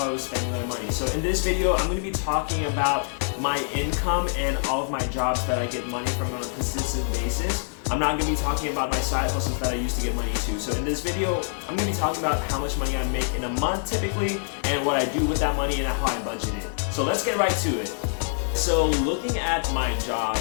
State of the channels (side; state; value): right; silent; 61 dB below the other